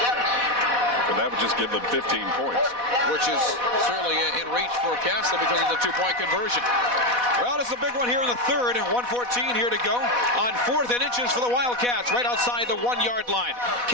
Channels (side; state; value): left; late; 4.1 ms